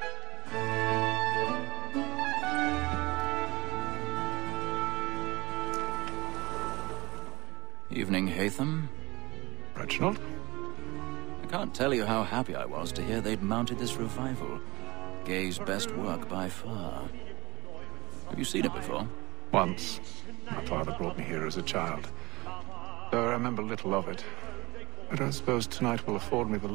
Evening, Haytham. Reginald? I can't tell you how happy I was to hear they'd mounted this revival. Gay's best work by far. Have you seen it before? Once. My father brought me here as a child. Though I remember little of it. I don't suppose tonight will afford me the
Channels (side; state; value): left; quieter; 22.0 dB